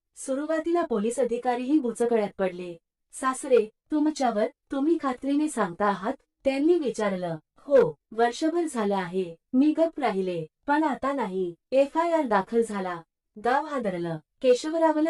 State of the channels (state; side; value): identical; both; correlation 1.00